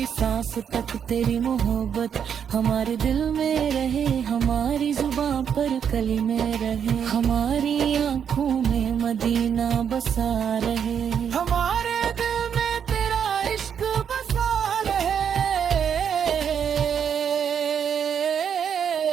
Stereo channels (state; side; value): quieter; left; 7.9 dB